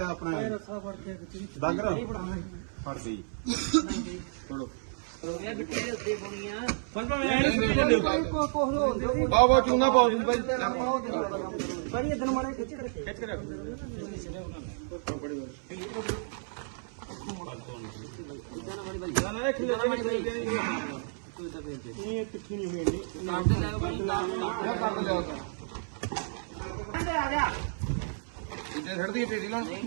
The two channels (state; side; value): silent; left; 57 dB below the other